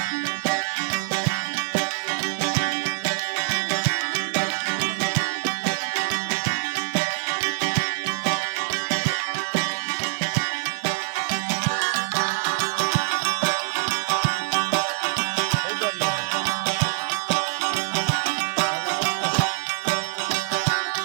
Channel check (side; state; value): left; silent; digital silence